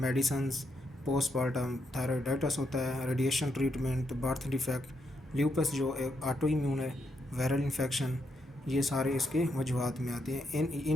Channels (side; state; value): both; normal; correlation 0.79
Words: postmortem thyroiditis होता है, radiation treatment, birth defect, lupus जो एक ऑटो इम्यून है, वायरल इन्फेक्शन, ये सारे इसके वजूहत में आते हैं।